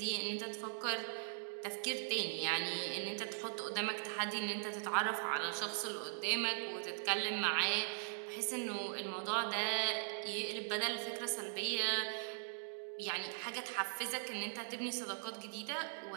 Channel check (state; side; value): silent; left; digital silence